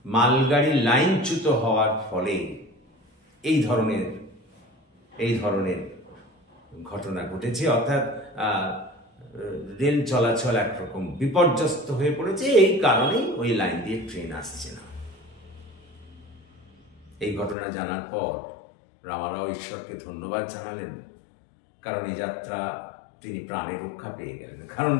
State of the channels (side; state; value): right; drops out; at 17.6 s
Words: মালগাড়ি লাইনচ্যুত হওয়ার ফলে এই ধরনের ঘটনা ঘটেছে, অর্থাৎ রেল চলাচল একরকম বিপর্যস্ত হয়ে পড়েছে। এই কারণেই ওই লাইন দিয়ে ট্রেন আসছে না। এই ঘটনা জানার পর রামারাও ঈশ্বরকে ধন্যবাদ জানালেন, কারণ এই যাত্রা তিনি প্রাণে রক্ষা পেয়ে গেলেন। কারণ